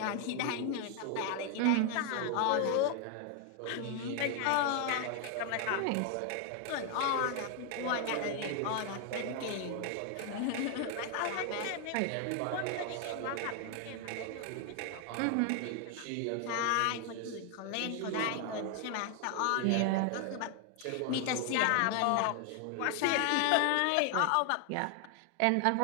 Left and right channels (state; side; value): different; both; correlation 0.00